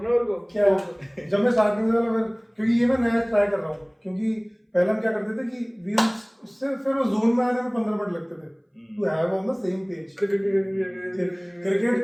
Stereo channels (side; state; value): both; identical; correlation 1.00